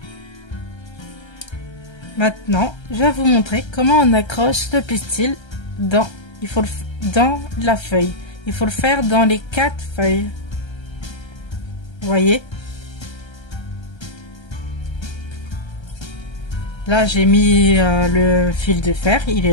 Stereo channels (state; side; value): late; right; 1.3 ms